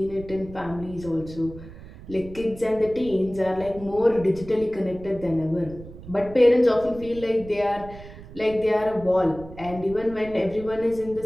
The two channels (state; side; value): noise; right; rumble, 16 dB below the sound